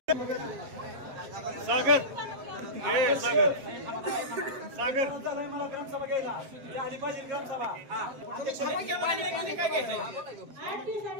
सागर हे सागर सागर मला ग्रामसभा घ्यायला झाली पाहिजे ग्रामसभा. काय घ्यायचं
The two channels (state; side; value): late; left; 7.4 ms